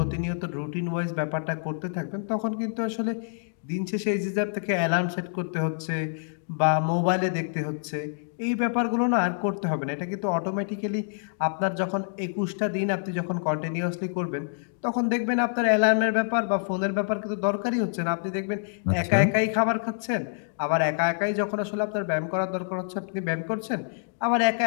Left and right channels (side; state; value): right; silent; digital silence